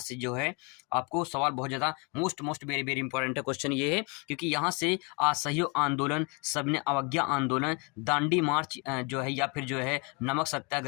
जो है आपको सवाल बहुत ज़्यादा मोस्ट वेरी इंपॉर्टेंट है। क्वेश्चन ये है क्योंकि यहाँ से असहयोग आंदोलन, सबने अवज्ञा आंदोलन, दांडी मार्च जो है, या फिर जो है नमक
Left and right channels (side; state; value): right; quieter; 31.5 dB